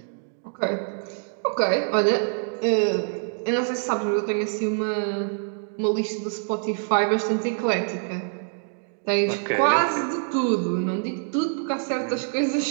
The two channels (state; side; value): silent; left; 62 dB below the other